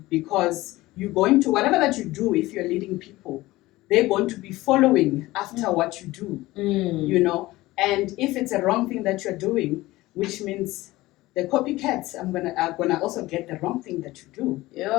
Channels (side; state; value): right; quieter; 18.5 dB